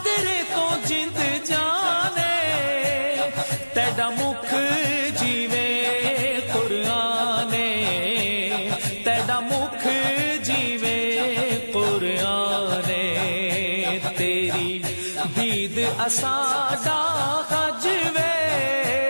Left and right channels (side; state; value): both; inverted; correlation -1.00